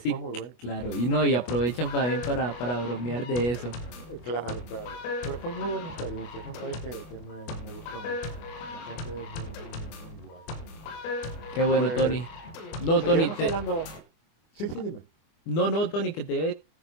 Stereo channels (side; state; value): right; late; 25 ms